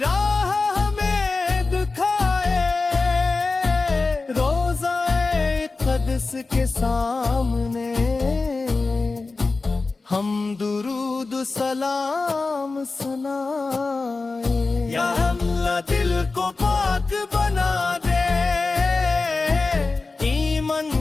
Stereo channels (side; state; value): right; quieter; 3.8 dB